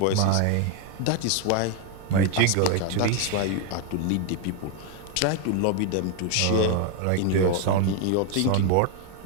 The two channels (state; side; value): different; both; correlation 0.00